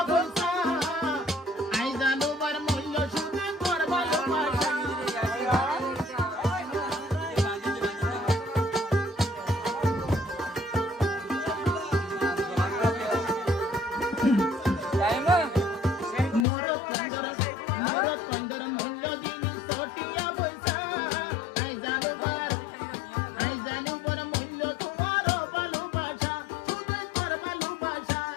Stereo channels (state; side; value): drops out; right; at 16.4 s